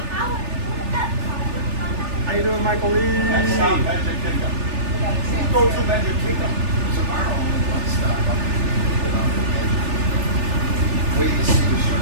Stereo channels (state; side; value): late; left; 3.4 ms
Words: How you doing, Michael Lee? Magic Kingdom. Go to Magic Kingdom tomorrow. Wait to see the show